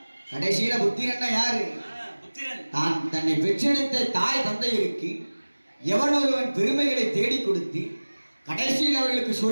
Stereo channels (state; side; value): inverted; both; correlation -1.00